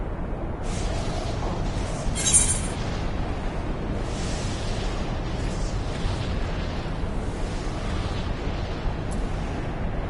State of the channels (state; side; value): identical; both; correlation 1.00